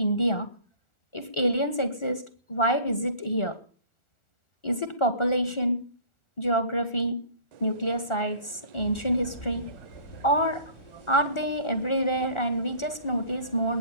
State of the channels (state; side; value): late; right; 1.4 ms